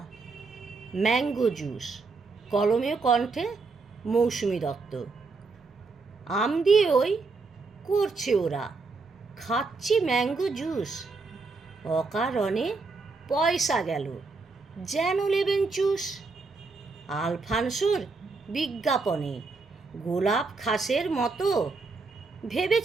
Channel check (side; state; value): left; quieter; 4.1 dB